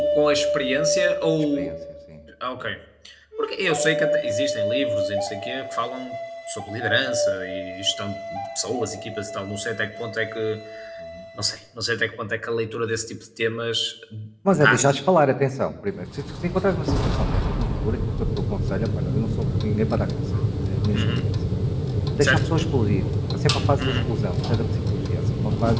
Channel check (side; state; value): both; identical; correlation 1.00